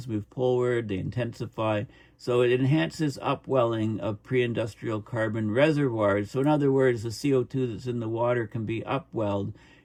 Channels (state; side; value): identical; both; correlation 1.00